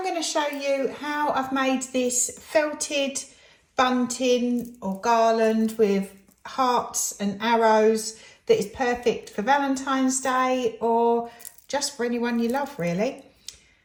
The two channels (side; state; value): both; identical; correlation 1.00